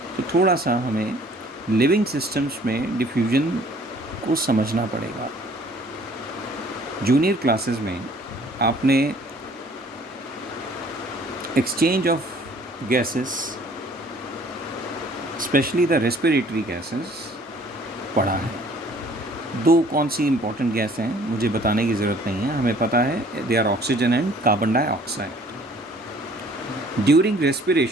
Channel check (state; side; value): normal; both; correlation 0.55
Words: तो थोड़ा सा हमें लिविंग सिस्टम्स में डिफ्यूजन को समझना पड़ेगा. जूनियर क्लासेस में आपने exchange of gases, specially the respiratory gases पढ़ा है. दो कौन सी इंपॉर्टेंट गैस हैं मुझे बताने की ज़रूरत नहीं है, हमें पता है. They are oxygen and carbon dioxide. During